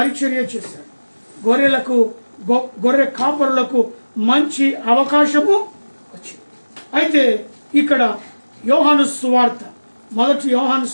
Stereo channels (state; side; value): inverted; both; correlation -1.00